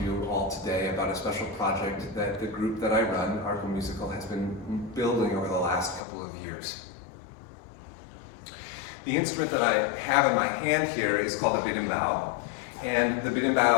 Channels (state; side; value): drops out; right; at 6.0 s